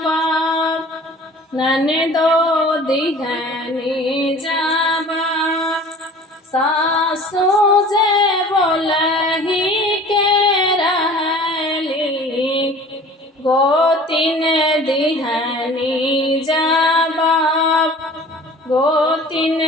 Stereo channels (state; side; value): normal; both; correlation 0.45